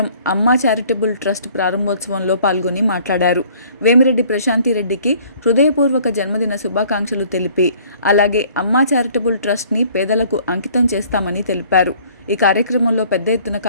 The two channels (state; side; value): inverted; both; correlation -0.56